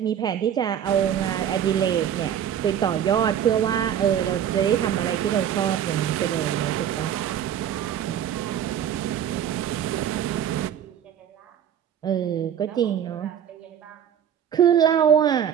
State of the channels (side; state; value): left; quieter; 9.5 dB